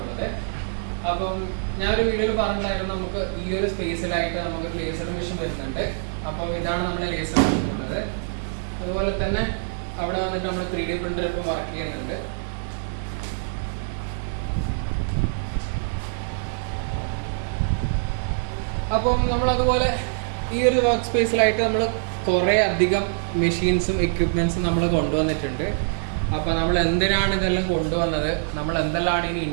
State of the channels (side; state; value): left; silent; digital silence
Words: ഉള്ളത്. അപ്പം ഞാനൊരു വീഡിയോയിൽ പറഞ്ഞിട്ടുണ്ടായിരുന്നു നമുക്ക് ഈ ഒരു സ്പേസിലായിട്ട് നമുക്ക് ലേസർ മെഷീൻ വരുന്നുണ്ട്. അപ്പം ഇതാണ് നമ്മുടെ ലേസർ മെഷീൻ ഉള്ളത്. അതുപോലെ തന്നെ അവിടെ വന്നിട്ട് നമ്മൾ 3D പ്രിന്റർ ഇപ്പം വർക്ക് ചെയ്യുന്നുണ്ട്. അപ്പം നമ്മളതുപോലെ ഈ ഒരു വർക്ക് സ്പേസിലായിട്ട് നമ്മൾ കുറേ അധികം മെഷീൻസും എക്യുപ്മെൻറ്റ്സും നമ്മൾ കൊണ്ടുവന്നിട്ടുണ്ട്. അപ്പോൾ നമ്മൾ എന്തിനാണ് ഇതെല്ലാം കൊണ്ടുവന്നത്, നമ്മൾ എന്തെല്ലാം ഇനി